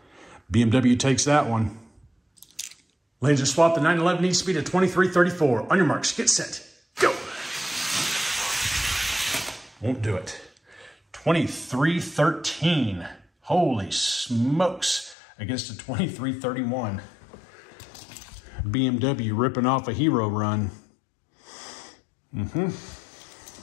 BMW takes that one. Lanes are swapped. The 911 needs to beat a 2334. On your marks, get set, go. Won't do it. 2313. Holy smokes. Against a 2331. BMW ripping off a hero run.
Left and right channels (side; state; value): right; drops out; at 15.2 s